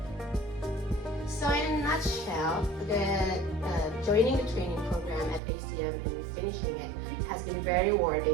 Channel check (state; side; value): drops out; left; at 5.4 s